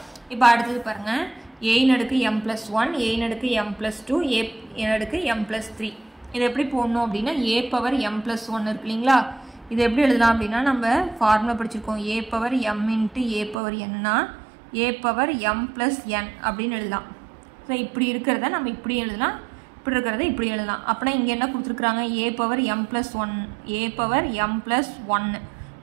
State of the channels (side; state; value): left; drops out; at 13.6 s